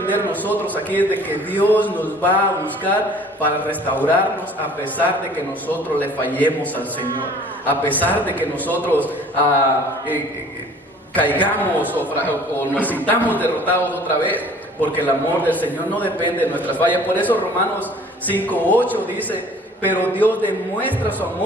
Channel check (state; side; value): normal; both; correlation 0.50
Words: nosotros aquí es de que Dios nos va a buscar para restaurarnos a pesar de que nosotros le fallemos al Señor. A pesar de que nosotros caigamos o nos sintamos derrotados otra vez. Porque el amor del Señor no depende de nuestras fallas. Por eso Romanos 5:8 dice, pero Dios demuestra su